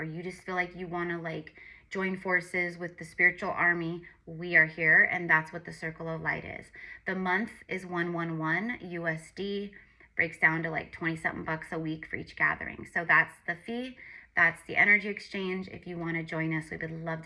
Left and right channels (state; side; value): identical; both; correlation 1.00